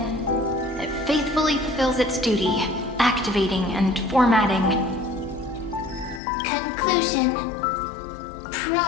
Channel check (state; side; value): drops out; right; at 6.2 s